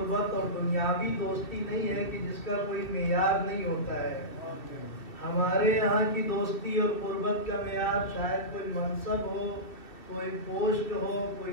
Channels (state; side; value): late; right; 2.5 ms